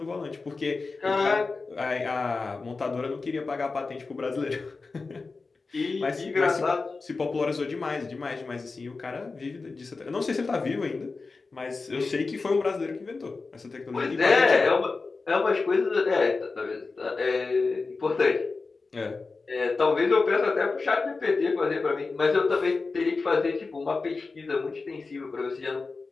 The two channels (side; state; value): right; quieter; 4.0 dB